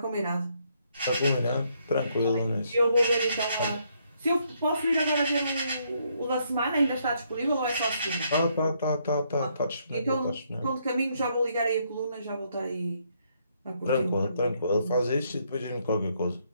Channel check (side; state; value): both; inverted; correlation -0.73